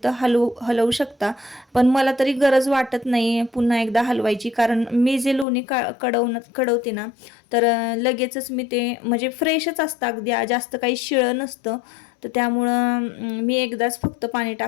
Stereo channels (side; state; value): right; drops out; at 5.5 s